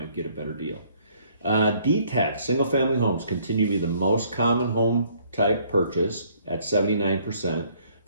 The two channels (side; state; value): both; inverted; correlation -0.63